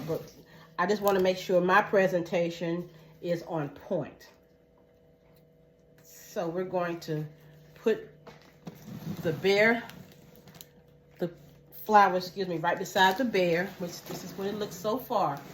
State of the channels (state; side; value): identical; both; correlation 1.00